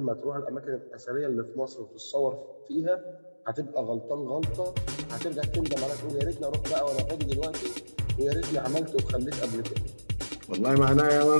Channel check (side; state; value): both; inverted; correlation -1.00